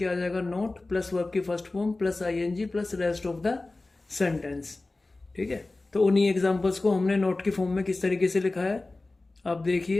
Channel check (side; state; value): right; quieter; 3.1 dB